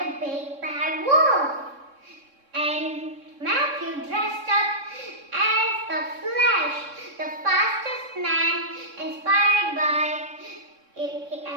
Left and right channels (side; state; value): left; late; 3.6 ms